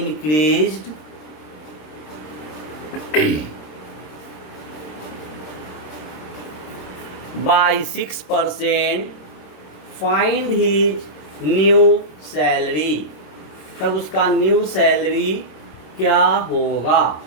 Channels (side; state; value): right; late; 26 ms